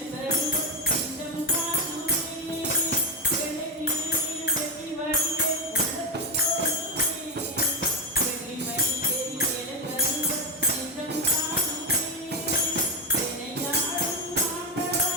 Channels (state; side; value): normal; both; correlation 0.11